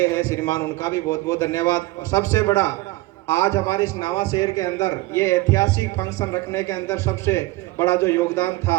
हैं श्रीमान, उनका भी बहुत बहुत धन्यवाद। और सबसे बड़ा आज हमारे इस नावा शहर के अंदर ये ऐतिहासिक फंक्शन रखने के अंदर सबसे बड़ा जो योगदान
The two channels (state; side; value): quieter; left; 19.9 dB